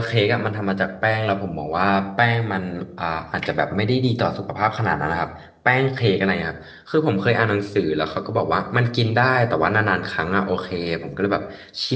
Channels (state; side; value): identical; both; correlation 1.00